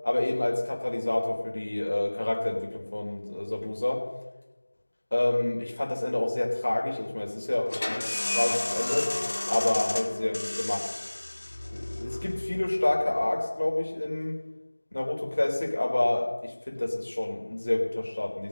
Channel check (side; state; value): both; inverted; correlation -1.00